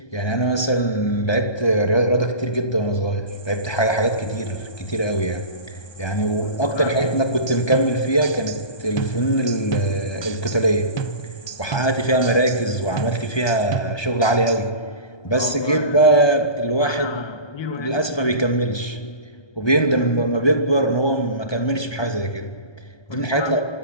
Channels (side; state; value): right; late; 1.2 ms